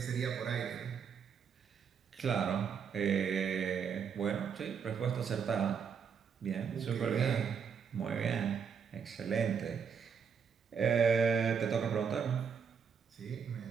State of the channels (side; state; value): left; quieter; 6.7 dB